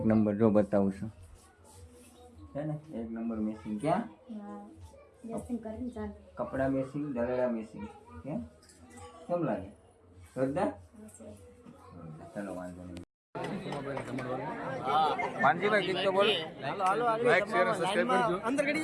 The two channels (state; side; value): identical; both; correlation 1.00